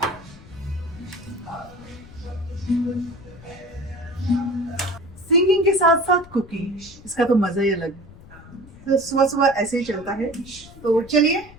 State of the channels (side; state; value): left; noise; rumble, 20 dB below the sound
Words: सिंगिंग के साथ साथ कुकिंग, इसका तो मजा ही अलग है। तो सुबह सुबह ऐसे ही चलता है। तो चलिए